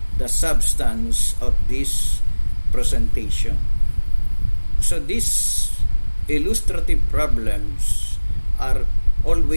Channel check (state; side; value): inverted; both; correlation -1.00